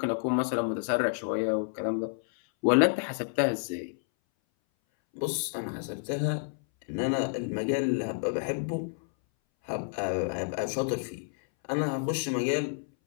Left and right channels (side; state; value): right; silent; 58 dB below the other